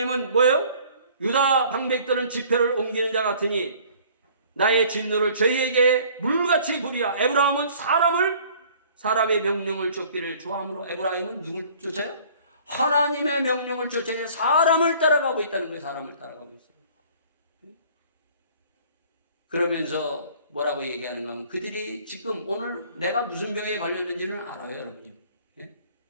뭐예요? 유다 방백들은 지표를 옮기는 자 같으니 나의 진노를 저희에게 물같이 부리라. 에브라임은 사람의 명령을 쫓기를 좋아하므로, 에브라임은 누굴 쫓아요? 하나님의 명령을 쫓아야 사람을 따라가고 있다는 거예요. 사람을 따라가고 있어요. 그러면서 뭐라고 얘기하는가 하면, 그들이 지금 오늘 내가 무슨 병에 걸렸는지는 알아요, 여러분.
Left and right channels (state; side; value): inverted; both; correlation -0.53